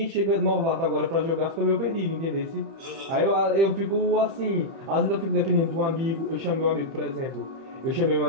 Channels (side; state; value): left; late; 30 ms